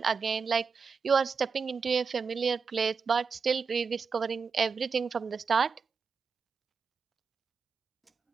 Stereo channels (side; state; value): left; quieter; 5.4 dB